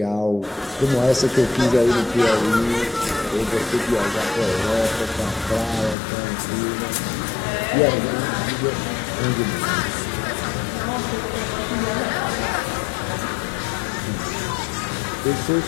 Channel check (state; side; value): drops out; right; at 6.0 s